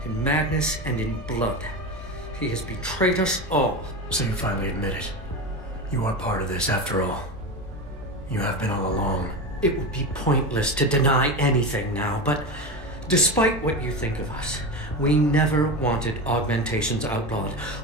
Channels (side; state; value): both; normal; correlation 0.22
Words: In madness and in blood. He has betrayed us all. So you finally admit it. You are part of this, after all. You have been all along. It would be pointless to deny anything now, but despite what you think of us, we never wanted augmentations outlawed.